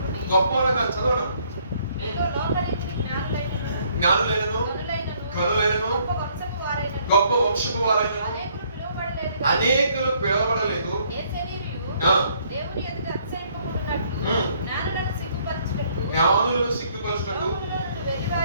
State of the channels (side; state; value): both; inverted; correlation -0.65